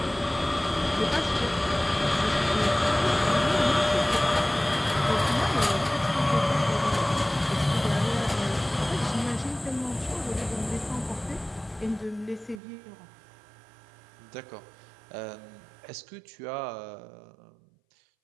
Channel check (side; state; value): left; drops out; at 12.6 s